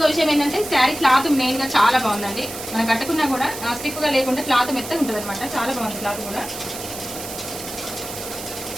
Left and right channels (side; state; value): right; noise; hiss, 10 dB below the sound